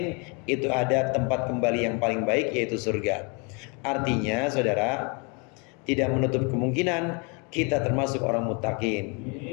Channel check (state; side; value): quieter; right; 33.2 dB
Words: itu ada tempat kembali yang paling baik, yaitu surga. Artinya saudara, tidak menutup kemungkinan kita termasuk orang muttaqin.